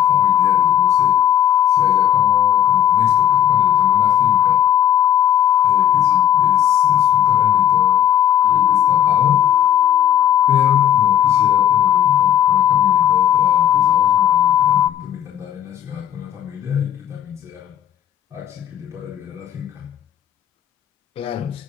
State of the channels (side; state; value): right; quieter; 10.3 dB